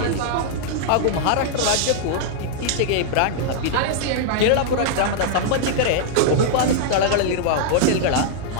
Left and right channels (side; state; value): both; different; correlation -0.01